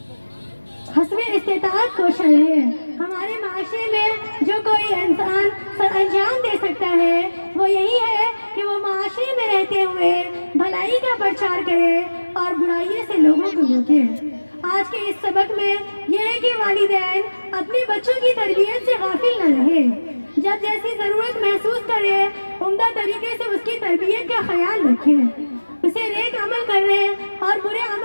حسب استطاعت کوشاں رہے۔ ہمارے معاشرے میں جو کوئی انسان سر انجام دے سکتا ہے وہ یہی ہے کہ وہ معاشرے میں رہتے ہوئے بھلائی کا پرچار کرے اور برائیوں سے لوگوں کو روکے۔ آج کے اس سبق میں یہ ہے کہ والدین اپنے بچوں کی تربیت سے غافل نہ رہے، جب جیسی ضرورت محسوس کرے عمدہ طریقے سے اس کی تربیت کا خیال رکھے، اسے نیک عمل کرنے اور برے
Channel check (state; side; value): inverted; both; correlation -1.00